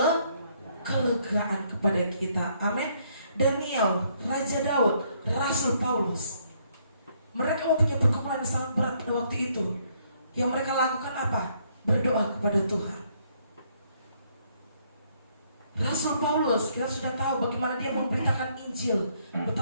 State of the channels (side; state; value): both; inverted; correlation -0.69